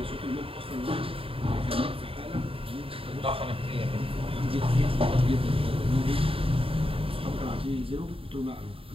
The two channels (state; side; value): late; left; 0.27 ms